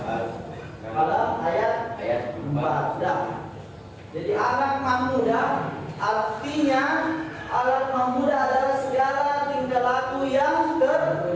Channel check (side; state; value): both; identical; correlation 1.00